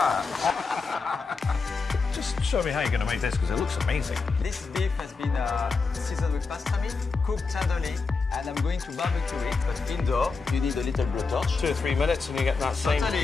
Just show me how you're going to make this, because it looks amazing. This beef has been seasoned with pastrami, cooked tenderly, and I'm going to barbecue it. But indoor, you need a little blowtorch. 2 or 3 minutes and you get that same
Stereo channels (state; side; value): quieter; right; 4.5 dB